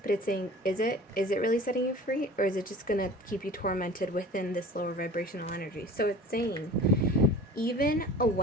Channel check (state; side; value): normal; both; correlation 0.41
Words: But it's saying, is it really setting you free, or is it just going to keep you tormented within this lower vibrational energy? So it's saying, even a